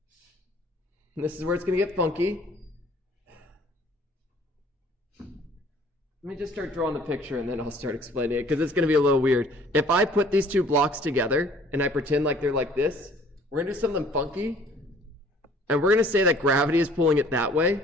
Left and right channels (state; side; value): normal; both; correlation 0.55